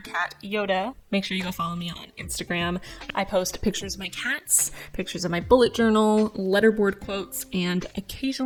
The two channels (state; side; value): identical; both; correlation 1.00